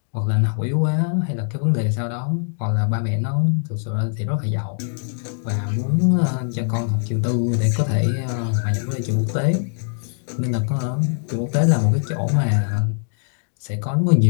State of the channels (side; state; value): right; silent; 64 dB below the other